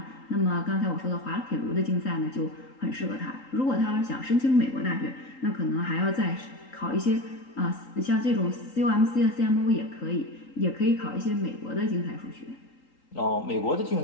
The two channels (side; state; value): right; late; 3.8 ms